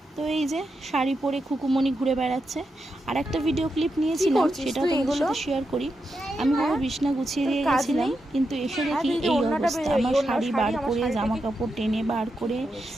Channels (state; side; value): normal; both; correlation 0.86